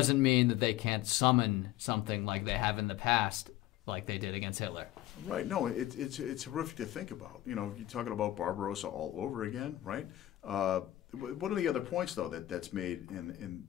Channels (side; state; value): right; quieter; 14.5 dB